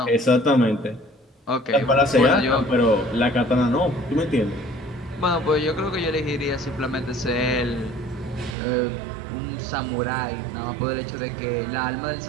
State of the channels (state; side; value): drops out; left; at 8.6 s